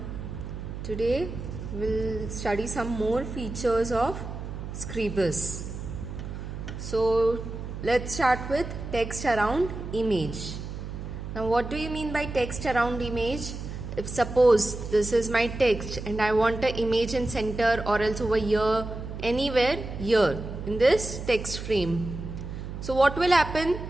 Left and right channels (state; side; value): noise; right; hum, 8 dB below the sound